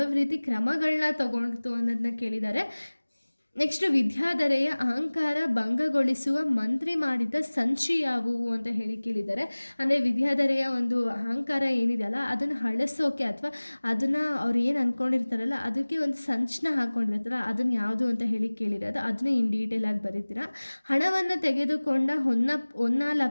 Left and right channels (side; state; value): both; inverted; correlation -1.00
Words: ರೀತಿ ಕ್ರಮಗಳನ್ನ ತಗೊಳ್ತು ಅನ್ನೋದನ್ನ ಕೇಳಿದ್ದಾರೆ. ನೆಕ್ಸ್ಟ್, ವಿದ್ಯಾಧರೆಯ ಅಹಂಕಾರ ಭಂಗಗೊಳಿಸುವ ಮಂತ್ರಿ ಮಾಡಿದ ಸಂಚಿ ಯಾವುವು ಅಂತ ಹೇಳಿ ಕೇಳಿದ್ದಾರೆ. ಅಂದರೆ ವಿದ್ಯಾಧರೆಯ ಒಂದು ಅಹಂಕಾರ ಏನಿದೆಯಲ್ಲ ಅದನ್ನು ಅಳಿಸೋಕೆ ಅಥವಾ ಅದನ್ನು ಅವ್ರು ಏನು ಅಂದ್ಕೊಂಡಿರ್ತಾರಲ್ಲ ಅದಕ್ಕೆ ಒಂದು ಸಂಚನ್ನ ಹಾಕ್ಕೊಂಡಿರ್ತಾರ ಅದನ್ನು ಯಾವುದು ಅಂತ ಹೇಳಿ ಕೇಳಿರೋದು ಅದನ್ನು ಇನ್ ಡೀಟೇಲ್ ಆಗಿ ಬರೀತೀರಾ. ಹಣವನ್ನು ತೆಗೆದುಕೊಂಡ